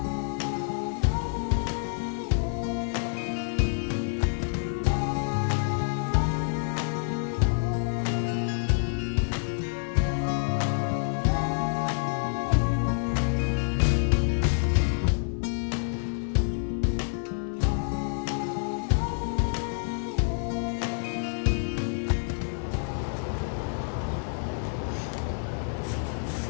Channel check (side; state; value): right; silent; 59 dB below the other